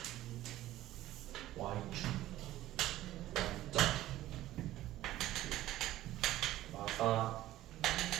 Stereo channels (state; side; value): quieter; left; 14.9 dB